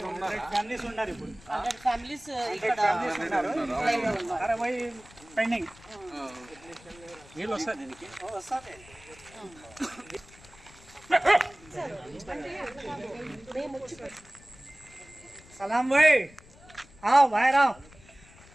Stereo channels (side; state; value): left; noise; rumble, 23 dB below the sound